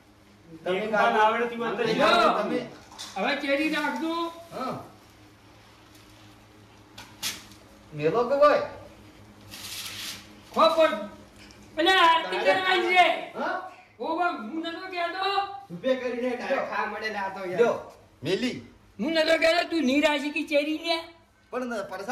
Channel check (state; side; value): identical; both; correlation 1.00